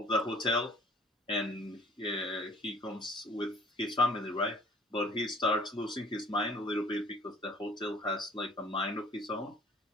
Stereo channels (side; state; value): both; normal; correlation 0.53